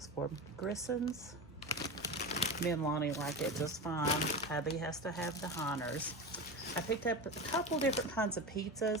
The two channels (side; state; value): both; normal; correlation 0.24